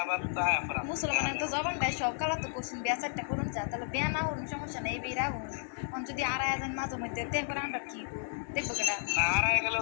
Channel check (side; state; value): right; silent; digital silence